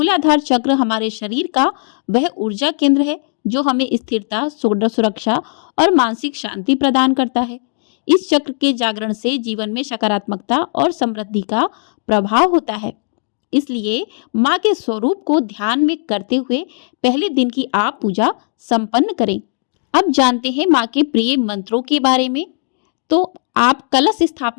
चक्र हमारे शरीर का वह ऊर्जा केंद्र है जो हमें स्थिरता, सुरक्षा और मानसिक शांति प्रदान करता है। इस चक्र के जागरण से जीवन में सकारात्मकता और समृद्धि का प्रभाव होता है। इसलिए माँ के स्वरूप को ध्यान में करते हुए पहले दिन की आप पूजा संपन्न करें। अब जानते हैं माँ के प्रिय मंत्रों के बारे में। तो आप कलश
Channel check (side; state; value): right; silent; digital silence